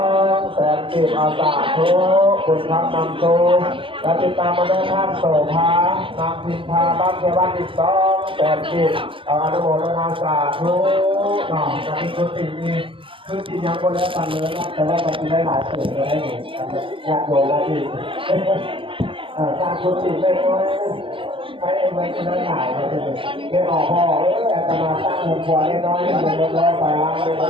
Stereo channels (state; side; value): late; left; 0.25 ms